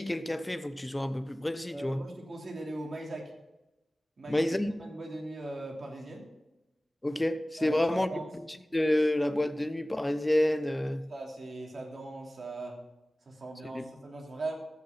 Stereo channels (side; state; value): both; normal; correlation 0.97